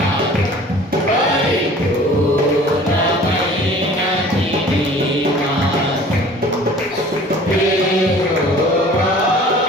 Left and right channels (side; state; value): both; normal; correlation 0.47